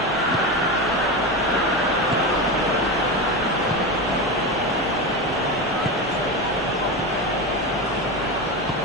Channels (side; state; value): both; normal; correlation 0.19